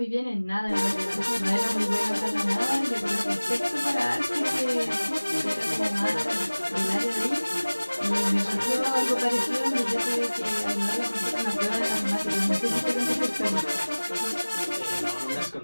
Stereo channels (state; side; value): inverted; both; correlation -1.00